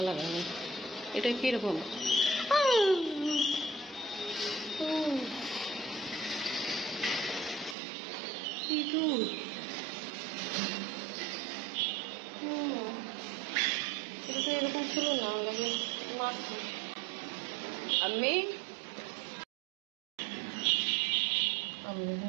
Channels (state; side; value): drops out; left; at 7.8 s